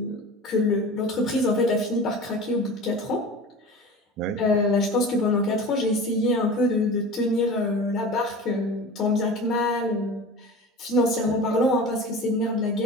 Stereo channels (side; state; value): both; normal; correlation 0.35